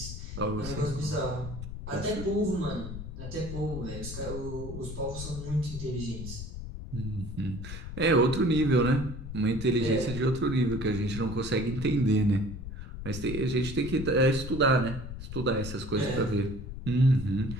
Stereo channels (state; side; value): noise; left; rumble, 8 dB below the sound